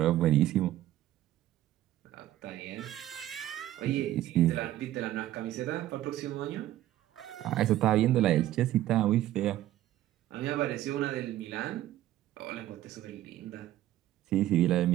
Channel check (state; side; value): quieter; left; 13.8 dB